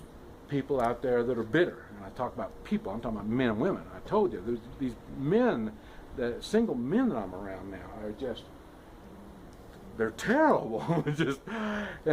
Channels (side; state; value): both; identical; correlation 1.00